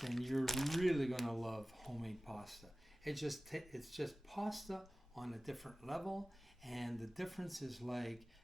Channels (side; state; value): both; normal; correlation 0.97